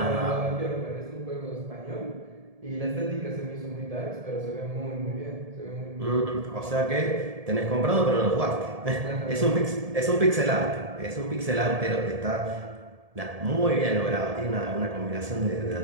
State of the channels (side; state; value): left; late; 1.7 ms